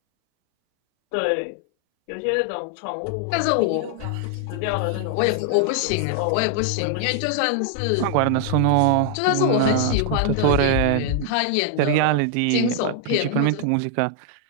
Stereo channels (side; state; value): both; different; correlation 0.00